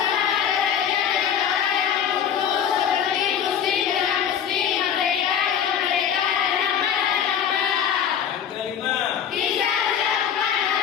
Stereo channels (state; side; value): quieter; right; 8.6 dB